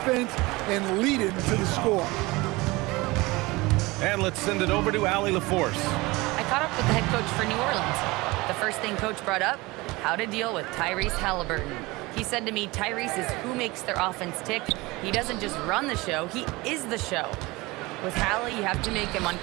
and lead it to the score. And let's send it over to Allie LaForce. I caught up with the head coach for New Orleans. The first thing coach brought up, how to deal with Tyrese Halliburton. He said to me, Tyrese is who makes their offense tick. He doesn't just run the show, he is the show. With Hallie, you have to make him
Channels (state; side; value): quieter; left; 22.3 dB